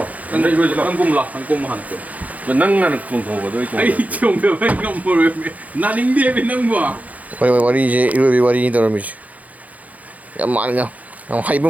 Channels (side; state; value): left; late; 0.074 ms